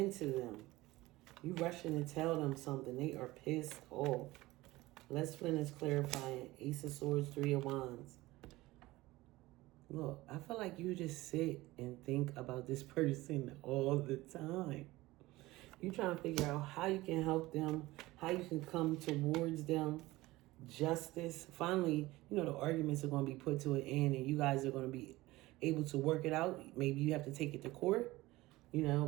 them. You rushing to tell them something. They are pissed off. Les Flynn is clarifying. Ace of Swords, Three of Wands. Look, I feel like you just sit and think about this person all the time. You trying to figure out how you can help them, how you can come towards them. Justice. Finally, you know, the arguments are going to be put to an end and you guys are going to be able to work it out. Maybe you have to take it to court. You know,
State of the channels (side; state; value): left; quieter; 19.0 dB